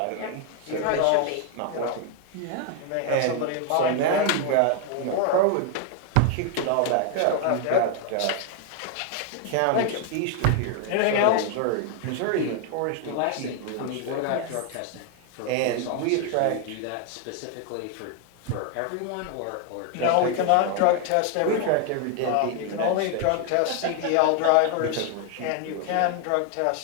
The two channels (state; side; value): different; both; correlation 0.00